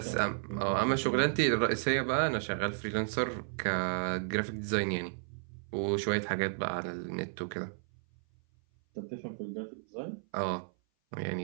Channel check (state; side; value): silent; left; 56 dB below the other